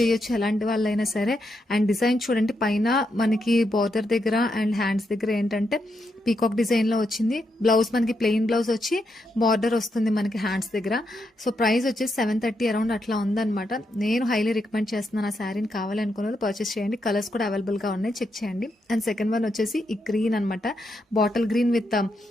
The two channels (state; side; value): normal; both; correlation 0.82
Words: ఎలాంటి వాళ్ళైనా సరే. అండ్ డిజైన్ చూడండి, పైన మనకి బార్డర్ దగ్గర అండ్ హ్యాండ్స్ దగ్గర ఏంటంటే పీకాక్ డిజైన్లో వచ్చింది. బ్లౌజ్ మనకి ప్లెయిన్ బ్లౌజ్ వచ్చి బార్డర్ వస్తుంది మనకి హ్యాండ్స్ దగ్గర. సో ప్రైస్ వచ్చేసి 730 అరౌండ్ అట్లా ఉందన్నమాట. నేను హైలీ రికమెండ్ చేస్తున్నాను. ఆ శారీని కావాలనుకున్న వాళ్ళు పర్చేస్ చేయండి. కలర్స్ కూడా అవైలబుల్గా ఉన్నాయి, చెక్ చేయండి. అండ్ సెకండ్ వన్ వచ్చేసి ఈ గ్రీన్ అనమాట, bottle green with